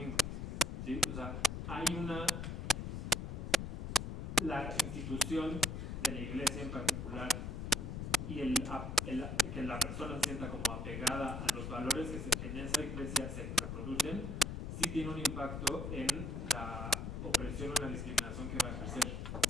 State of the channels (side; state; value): left; noise; rumble, 5 dB below the sound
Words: ¿sí? O sea, hay la institución de la iglesia en particular y que la persona se sienta como apegada a los valores que en esa iglesia se reproducen, sí tiene un impacto en la opresión o la discriminación que va a ejercer.